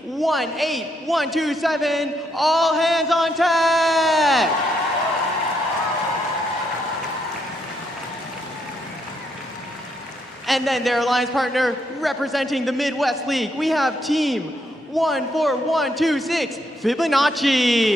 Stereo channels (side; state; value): both; normal; correlation 0.76